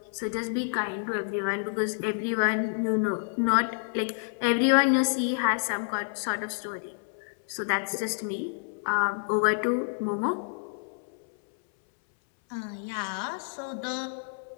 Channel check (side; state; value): right; silent; 59 dB below the other